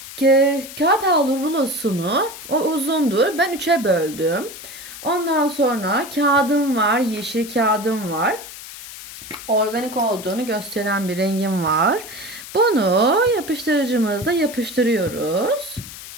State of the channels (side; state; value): left; noise; hiss, 13 dB below the sound